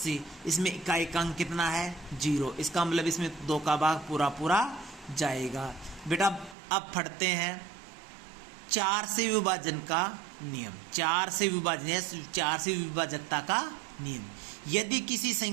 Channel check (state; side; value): drops out; left; at 6.6 s